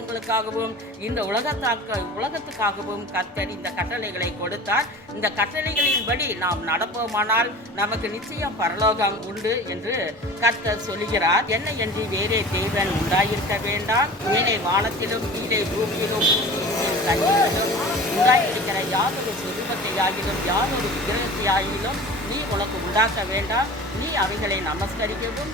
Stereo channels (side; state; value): both; normal; correlation 0.38